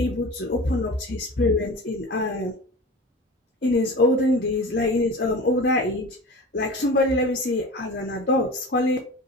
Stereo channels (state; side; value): normal; both; correlation 0.34